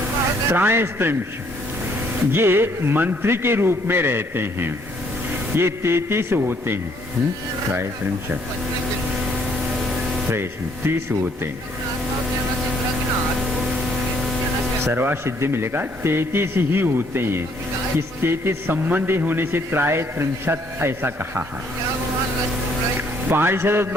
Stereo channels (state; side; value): normal; both; correlation 0.66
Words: त्रयस्त्रिंश ये मंत्री के रूप में रहते हैं। ये 33 होते हैं। त्रयस्त्रिंश 30 होते हैं। सर्वासिद्धि मिलेगा 33 ही होते हैं। इस 33 संबंधी होने से त्रयस्त्रिंशत् ऐसा कहा है। पारिषद